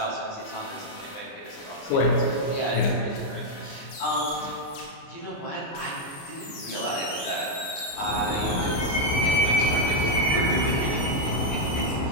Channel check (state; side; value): late; right; 29 ms